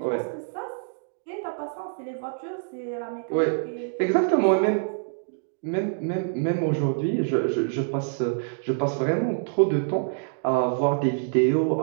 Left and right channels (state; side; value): silent; left; digital silence